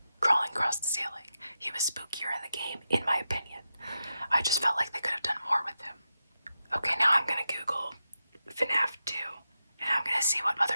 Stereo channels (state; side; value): inverted; both; correlation -0.89